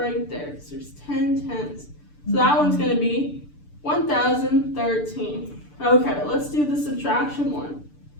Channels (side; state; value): right; late; 6.8 ms